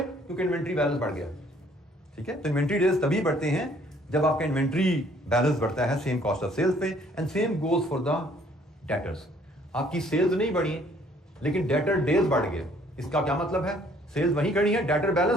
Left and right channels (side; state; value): both; normal; correlation 0.61